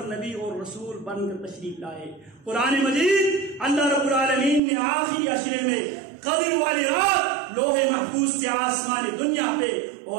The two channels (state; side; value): drops out; left; at 4.6 s